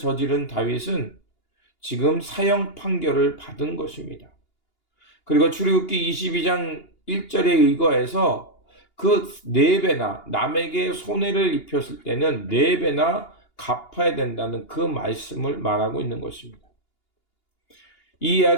다윗은 지금 사형 판결을 받은 것입니다. 그리고 출애굽기 22장 1절에 의거해서 그 4배나 남에게 손해를 입혔을 때는 4배나 갚아야 된다는 그 말씀을 말하고 있는 것입니다. 이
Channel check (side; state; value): right; late; 2.8 ms